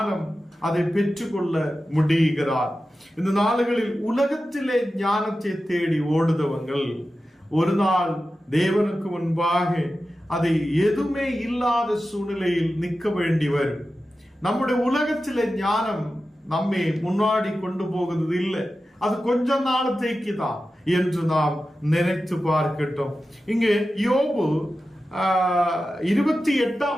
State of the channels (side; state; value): both; normal; correlation 0.93